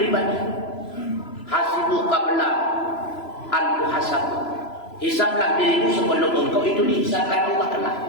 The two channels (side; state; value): right; late; 3.0 ms